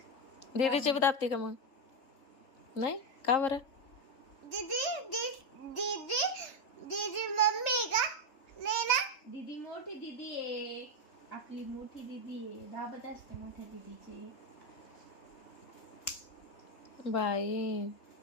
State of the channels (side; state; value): right; late; 3.8 ms